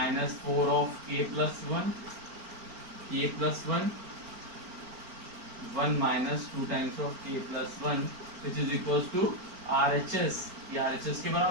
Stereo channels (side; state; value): left; late; 4.4 ms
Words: 4 of k plus 1 k plus 1 1 minus 2 times of k plus 1 which is equals to RHS। ये RHS के